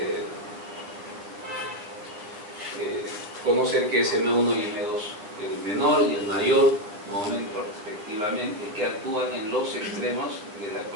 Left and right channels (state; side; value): late; left; 9.6 ms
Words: conocer qué es M1 y M2, el menor y el mayor momento respectivamente, que actúan en los extremos de la